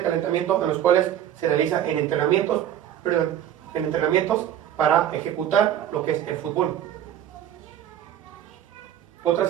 calentamiento en los cuales se realiza en entrenamientos para ejecutar lo que es el fútbol. Otra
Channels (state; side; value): quieter; left; 10.8 dB